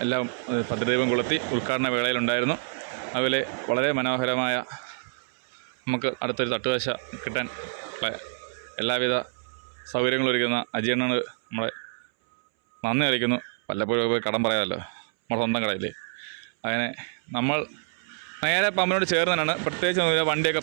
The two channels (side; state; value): left; silent; 60 dB below the other